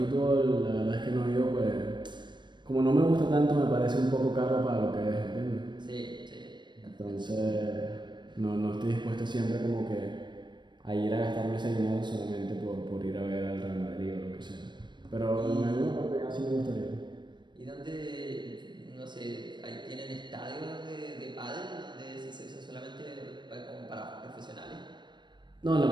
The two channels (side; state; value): left; late; 0.22 ms